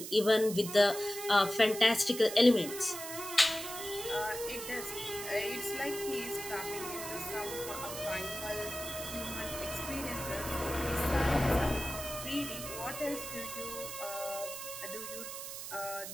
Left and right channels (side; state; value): right; noise; hiss, 8 dB below the sound